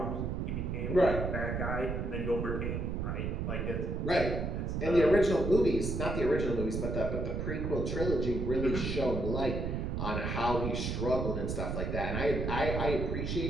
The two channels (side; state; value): right; noise; rumble, 2 dB below the sound